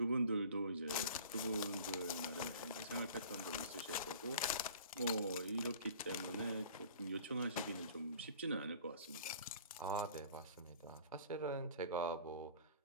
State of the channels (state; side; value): inverted; both; correlation -0.45